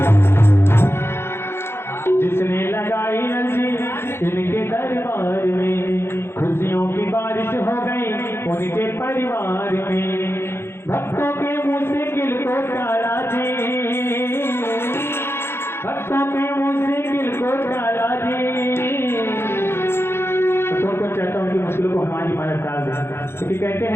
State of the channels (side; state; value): right; late; 0.12 ms